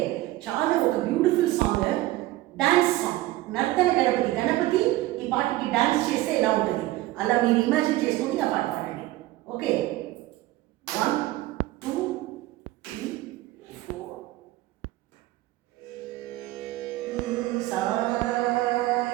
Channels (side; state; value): left; quieter; 17.2 dB